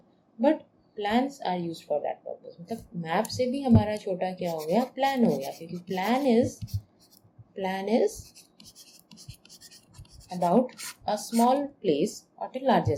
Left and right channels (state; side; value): identical; both; correlation 1.00